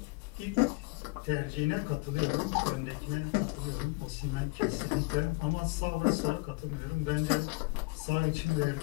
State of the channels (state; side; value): quieter; right; 25.4 dB